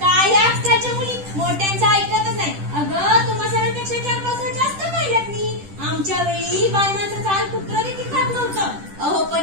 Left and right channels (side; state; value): left; late; 10 ms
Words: काय या आजकालच्या मुली मोठ्यांचं ऐकतच नाही. अगं तुम्हा सरांपेक्षा 4-5 वर्ष जास्त पाहिल्यात मी. आमच्या वेळी बायमांचं चाल कुत्र देखील खात नव्हतं. अहो